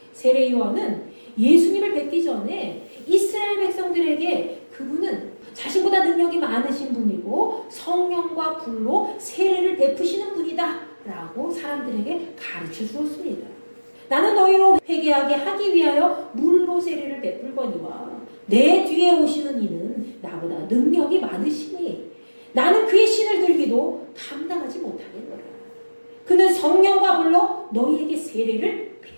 세례 요한은 예수님을 뵙기 전에 이스라엘 백성들에게 그분은 자신보다 능력이 많으신 분이고 성령과 불로 세례를 베푸시는 분이다 라고 사람들에게 가르쳐 주었습니다. 나는 너희로 회개하게 하기 위하여 물로 세례를 베풀거니와 내 뒤에 오시는 이는 나보다 능력이 많으시니 나는 그의 신을 들기도 감당하지 못하겠노라. 그는 성령과 불로 너희에게 세례를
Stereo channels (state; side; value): inverted; both; correlation -1.00